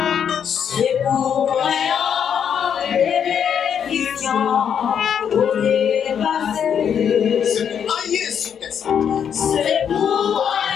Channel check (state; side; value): quieter; right; 8.1 dB